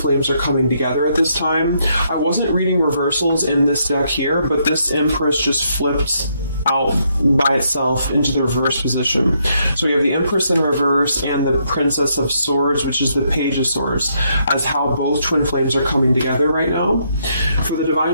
are coming together at this time. I wasn't reading reversals in this deck here, but this Empress just flipped out by itself into the reverse position. So we have the Empress in reverse and the Princess of Swords, which is the Page of Swords, as how both twin flames are coming together right now. For the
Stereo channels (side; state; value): both; inverted; correlation -0.75